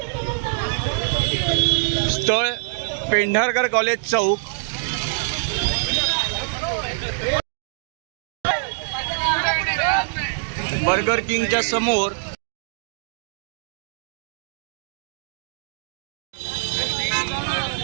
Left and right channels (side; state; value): left; silent; digital silence